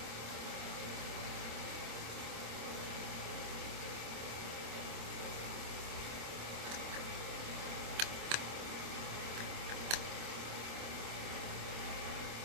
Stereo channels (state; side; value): late; left; 26 ms